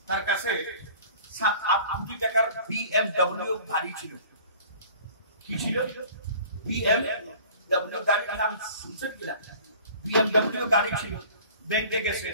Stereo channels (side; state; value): both; inverted; correlation -0.46